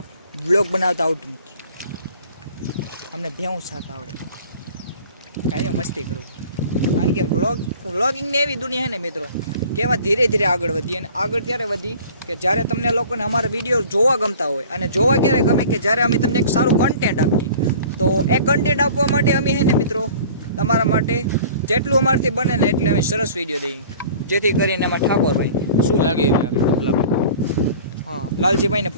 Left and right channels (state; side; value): inverted; both; correlation -0.46